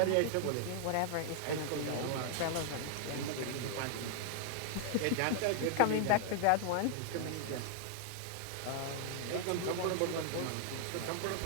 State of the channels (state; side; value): different; both; correlation 0.00